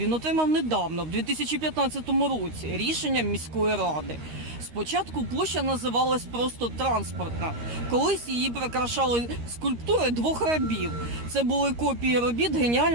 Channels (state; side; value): late; left; 13 ms